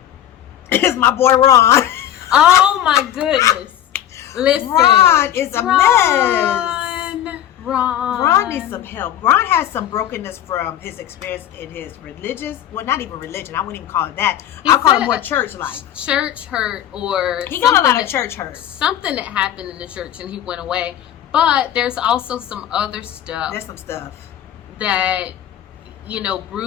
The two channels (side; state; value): right; quieter; 11.2 dB